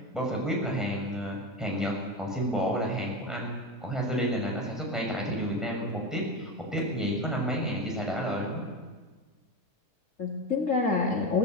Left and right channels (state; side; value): normal; both; correlation 0.20